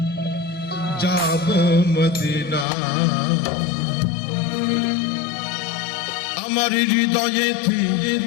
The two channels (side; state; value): right; drops out; at 2.7 s